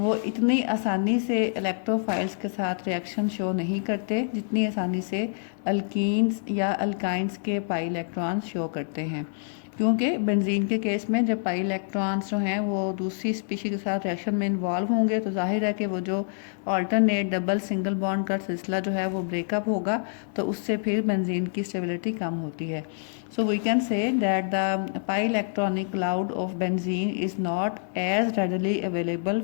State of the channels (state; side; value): silent; right; digital silence